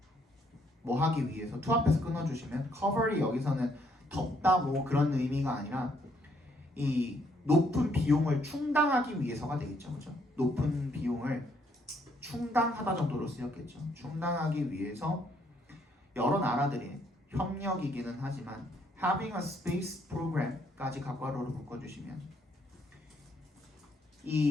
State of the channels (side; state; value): both; normal; correlation 0.70